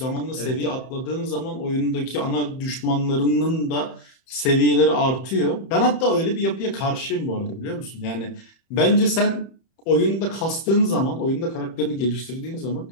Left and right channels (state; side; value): late; right; 31 ms